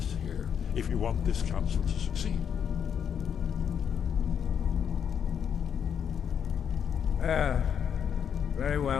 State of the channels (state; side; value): quieter; right; 7.9 dB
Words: here if you want this council to succeed. Very